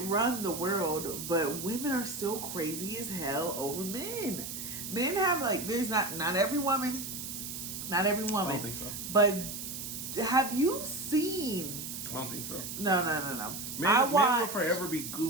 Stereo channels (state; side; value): noise; right; hiss, 7 dB below the sound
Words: the world, but women are still crazy as hell over men. Men have, like, there's not every woman. I don't think so. But have you seen? I don't think so. No. Men will forever be